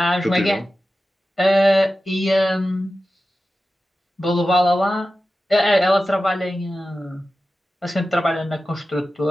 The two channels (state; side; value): normal; both; correlation 0.93